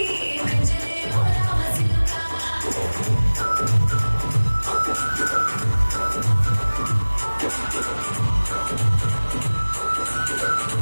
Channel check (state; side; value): inverted; both; correlation -1.00